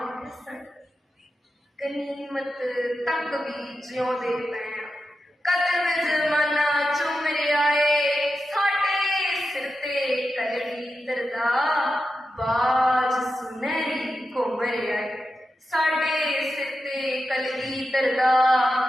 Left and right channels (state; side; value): normal; both; correlation 0.90